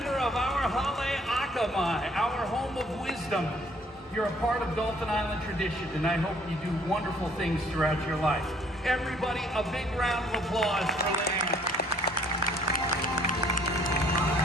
of our Hale Akamai, our home of wisdom. You're a part of Dolphin Island tradition, and I hope you do wonderful things throughout your life. Everybody, a big round of applause for Leanne.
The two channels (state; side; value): normal; both; correlation 0.61